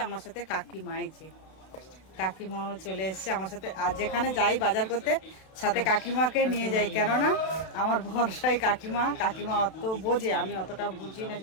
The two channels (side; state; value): right; late; 32 ms